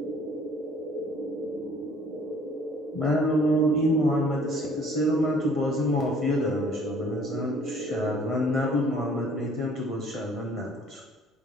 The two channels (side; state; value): both; normal; correlation 0.56